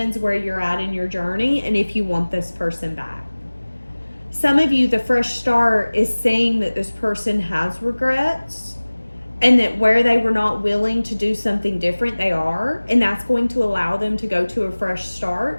where you're at in your journey and if you want this person back. Some of you, the fresh start is saying that this person has regrets and that where they were not willing to do something different, they are. And that's going to allow them to go to a fresh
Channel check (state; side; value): inverted; both; correlation -1.00